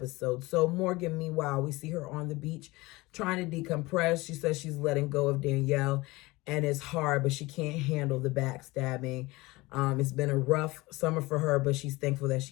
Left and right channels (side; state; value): right; quieter; 21.6 dB